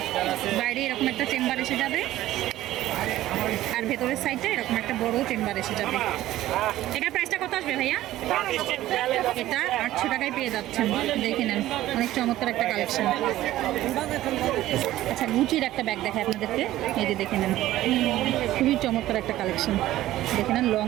বাইরে এরকম একটা চেম্বার এসে যাবে আর ভেতরের সাইডটা এরকম একটা বড় চেম্বার এসে যাবে। এটার প্রাইসটা কত আসবে ভাইয়া? এটা 800 টাকায় পেয়ে যাচ্ছেন, দেখে নেন অনেক চমৎকার একটা কালেকশন। আচ্ছা গুচির একটা ব্যাগ দেখায় আপনাদেরকে, এই যে দেখে নেন খুবই চমৎকার একটা কালেকশন, দেখে নেন লং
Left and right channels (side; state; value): left; quieter; 14.8 dB